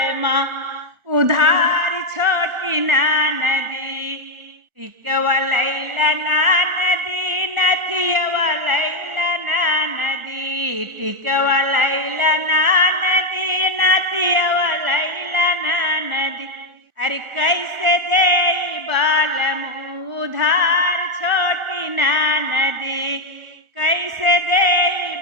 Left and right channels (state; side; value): late; left; 1.4 ms